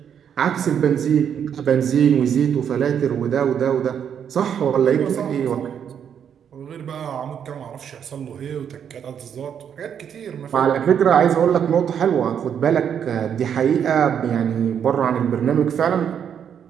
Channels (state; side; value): quieter; left; 8.3 dB